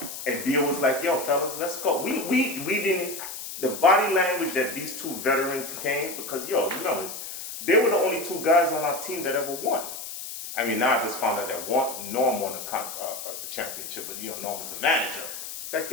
And Dio was like, yo, fellas, let's go. We didn't, the body language that these two veterans came, because, yo, remember, they were the only 2 guys on our team that ever won. I mean, now I just found out that Norm won a championship, but, you know, Norm was the manager. It's like,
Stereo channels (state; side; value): noise; left; hiss, 9 dB below the sound